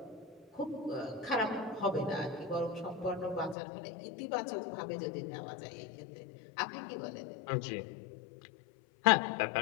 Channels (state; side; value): drops out; right; at 3.6 s